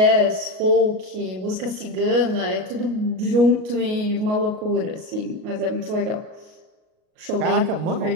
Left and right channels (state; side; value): late; left; 38 ms